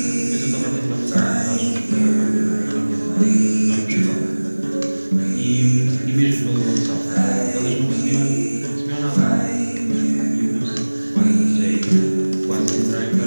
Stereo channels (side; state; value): both; inverted; correlation -1.00